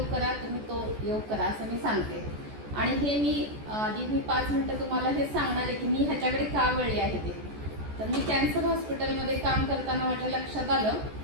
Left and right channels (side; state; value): left; late; 14 ms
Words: करा, तुम्ही तो योग करा असं मी सांगते. आणि हे मी आधी 5 मिनटं तुम्हाला हे सांगणार आहे की मी ह्याच्याकडे का वळले आहे ते. तर मी कॅन्सर हॉस्पिटलमध्ये काम करताना माझ्या लक्षात आलं